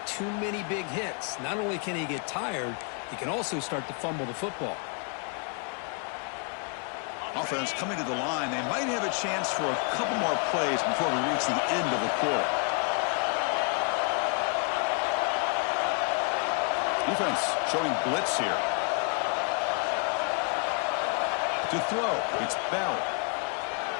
too many big hits. Not only can he get tired, he can also start to fumble the football. Offense coming to the line. They might have a chance for a couple more plays before we reach the end of the quarter. Defense showing blitz here. To throw, it's Bell.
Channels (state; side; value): quieter; right; 39.8 dB